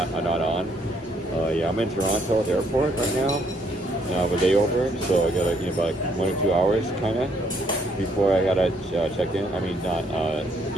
on. Yeah, I'm in Toronto Airport right now. With layover, so I got like about like 1 or 2 hours kind of before I gotta check in. I mean, not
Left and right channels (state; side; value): normal; both; correlation 0.69